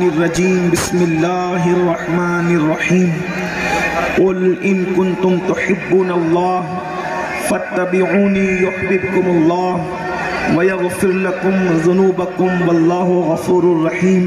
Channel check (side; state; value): both; identical; correlation 1.00